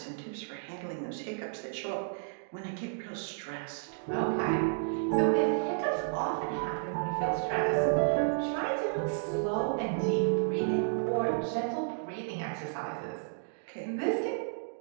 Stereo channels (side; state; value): left; silent; digital silence